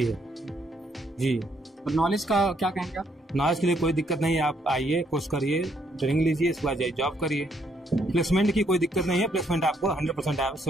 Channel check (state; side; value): normal; both; correlation 0.72